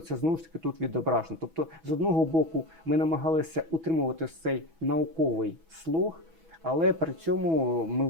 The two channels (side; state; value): left; late; 6.1 ms